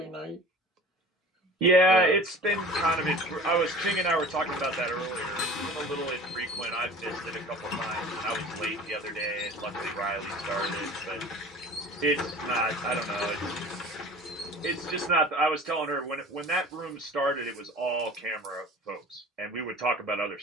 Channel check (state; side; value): normal; both; correlation 0.41